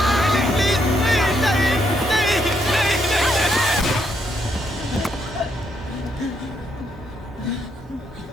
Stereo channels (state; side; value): normal; both; correlation 0.76